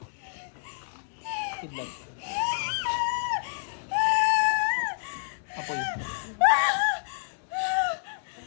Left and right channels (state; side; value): silent; right; digital silence